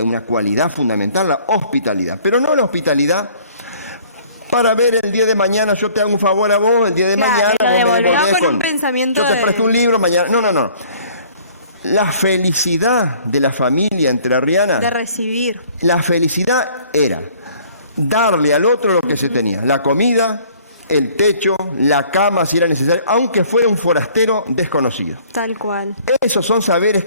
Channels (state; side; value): inverted; both; correlation -0.56